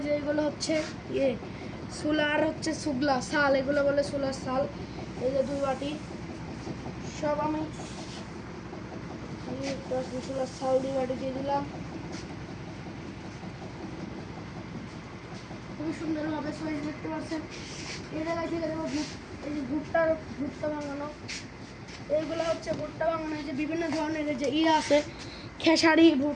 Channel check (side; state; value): both; identical; correlation 1.00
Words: যে এগুলো হচ্ছে সোলার হচ্ছে সুগলা শাল, এগুলো বলে সোলার শাল। এই যে 2 বাটি সব আমি সোলার শাল 2 বাটি দিয়ে দিলাম। খুবই সুন্দরভাবে সাইজ দেখতে পাচ্ছেন। এই জায়গায় থেকে দেবো এই যে ভুট্টা ভাঙানো, এইগুলো হচ্ছে ভুট্টা ভাঙানো। এই যে বিভিন্ন ধরনের যে আছে খেসারি,